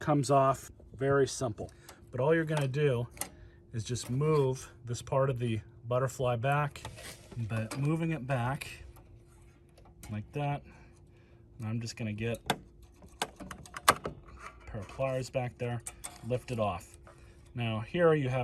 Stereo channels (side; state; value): both; identical; correlation 1.00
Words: off very simple. But all you're gonna do is just move this part of the butterfly back, but moving it back like that. And I'm just gonna get a pair of pliers back there, lift it off. Now here you